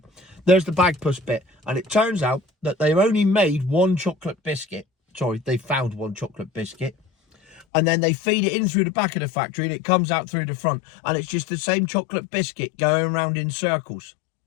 there's the Bagpuss bit. And it turns out that they've only made one chocolate biscuit. Sorry, they found one chocolate biscuit. And then they feed it in through the back of the factory and it comes out through the front. And it's just the same chocolate biscuit going around in circles.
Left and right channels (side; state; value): right; drops out; at 7.7 s